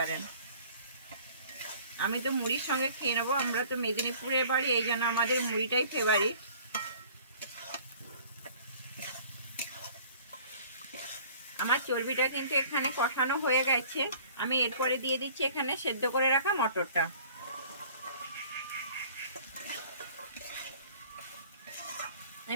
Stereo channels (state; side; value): inverted; both; correlation -0.51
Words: আমি তো মুড়ির সঙ্গে খেয়ে নেবো। আমরা তো মেদিনীপুরের বাড়ি, এই জন্য আমাদের মুড়িটাই ফেভারিট। আমার চর্বিটা কিন্তু এখানে কষানো হয়ে গেছে। আমি এরপরে দিয়ে দিচ্ছি এখানে সেদ্ধ করে রাখা মটরটা।